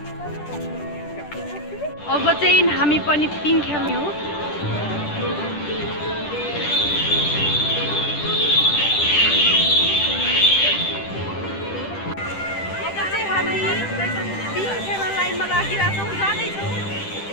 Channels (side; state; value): right; late; 10 ms